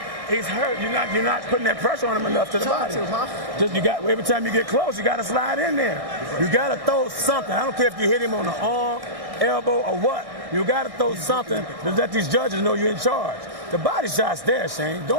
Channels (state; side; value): late; left; 1.1 ms